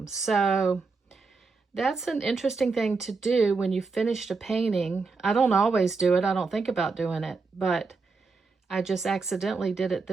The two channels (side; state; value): left; quieter; 4.3 dB